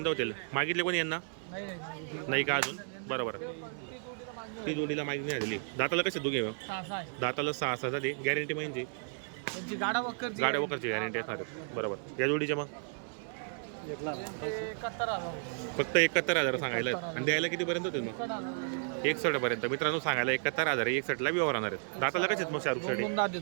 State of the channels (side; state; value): left; silent; digital silence